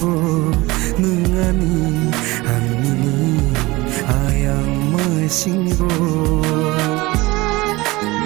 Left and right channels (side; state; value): left; quieter; 21.3 dB